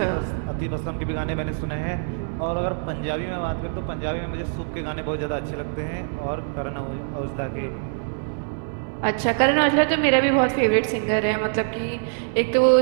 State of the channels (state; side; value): silent; left; 62 dB below the other